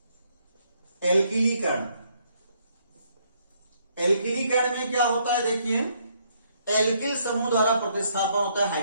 एल्किलीकरण। एल्किलीकरण में क्या होता है, देखिए एल्किल समूह द्वारा प्रतिस्थापन होता है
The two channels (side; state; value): both; inverted; correlation -0.70